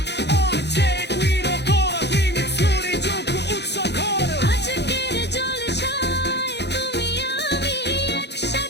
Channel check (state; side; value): late; right; 0.50 ms